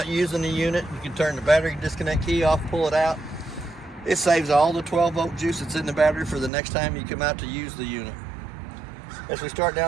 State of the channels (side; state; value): left; drops out; at 6.5 s